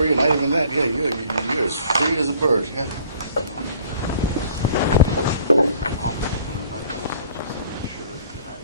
you, not even that. Yeah, you're as free as a bird, yeah.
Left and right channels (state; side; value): inverted; both; correlation -0.55